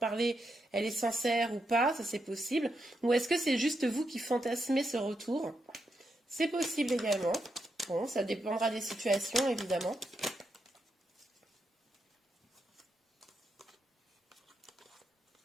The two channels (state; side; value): normal; both; correlation 0.83